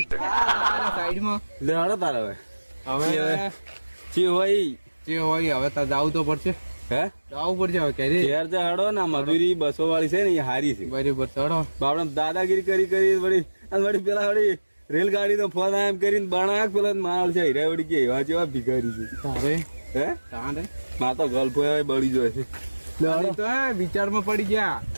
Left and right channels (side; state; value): both; inverted; correlation -1.00